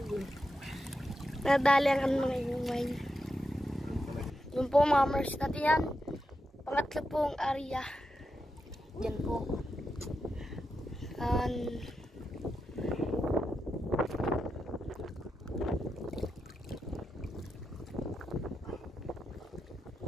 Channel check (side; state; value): both; normal; correlation 0.87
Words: Nadali ang mga iumay. Yun po mga mars natin yan. Pangatlo pong area. Yan po.